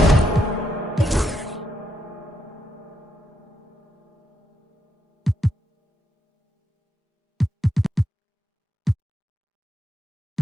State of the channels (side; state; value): both; normal; correlation 0.81